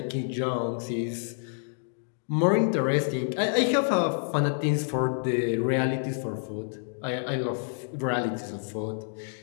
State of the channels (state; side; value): silent; right; digital silence